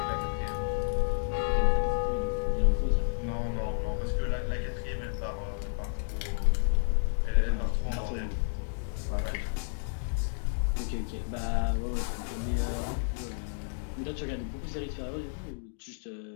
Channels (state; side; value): silent; right; digital silence